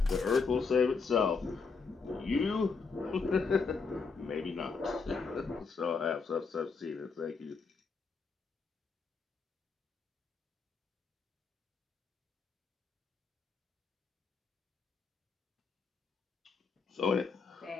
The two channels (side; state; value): right; quieter; 4.8 dB